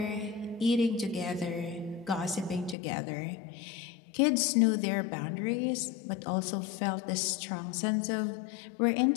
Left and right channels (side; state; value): right; drops out; at 2.8 s